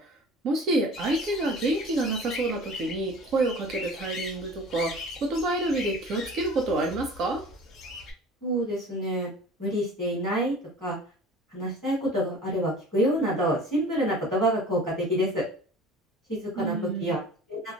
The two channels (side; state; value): both; normal; correlation 0.43